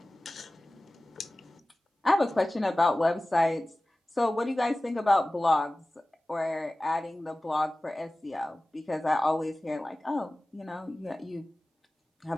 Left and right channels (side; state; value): both; normal; correlation 0.97